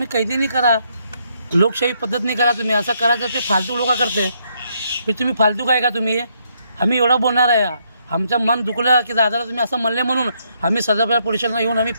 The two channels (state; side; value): inverted; both; correlation -0.73